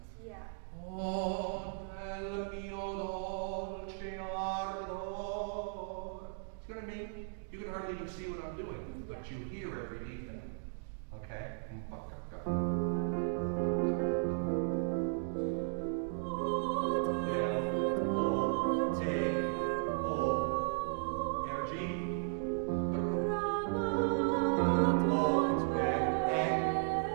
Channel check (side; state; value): left; silent; digital silence